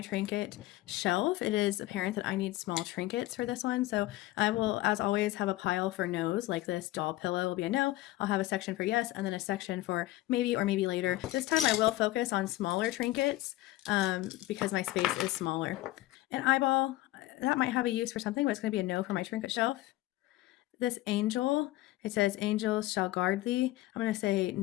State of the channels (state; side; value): quieter; right; 17.0 dB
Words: trinket shelf, it is apparent that I need small trinkets for this one. So I will, as always, have a pile for no's, like this doll pillow will be a no. I'll have a section for yes, and then a section for maybe or maybe later. This time I will focus on smaller trinkets because my space is smaller. An eyeball, that might have a use for something, but it's going to be a no for my trinket shelf. This angel, it says angels shall guard thee. I'm going to say